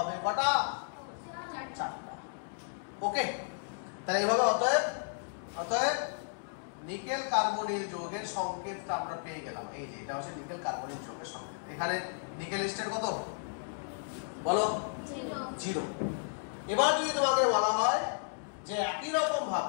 কটা? 4টা। ওকে, তাহলে এইভাবে অতএব নিকেল কার্বনিল যৌগের সংকেতটা আমরা পেয়ে গেলাম। এই যে এটা হচ্ছে নিকেল কার্বনিল যৌগের সংকেত। এখানে নিকেল স্টেট কত বলো? 0। এবার যদি তোমাকে বলা হয় যে একই রকম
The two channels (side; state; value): right; silent; digital silence